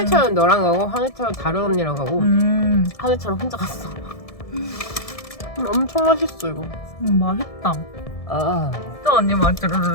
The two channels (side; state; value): right; late; 1.7 ms